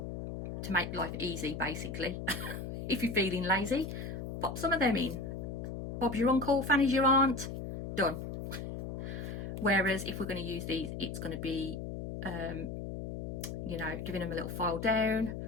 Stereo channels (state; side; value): noise; left; hum, 6 dB below the sound